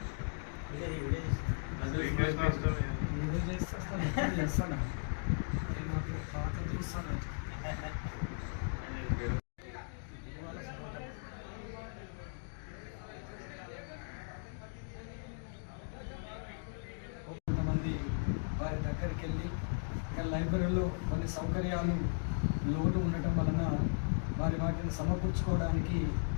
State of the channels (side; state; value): right; silent; digital silence